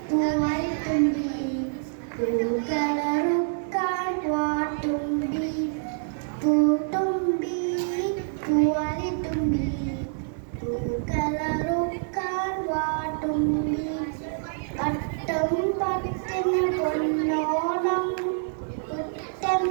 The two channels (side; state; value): left; silent; 61 dB below the other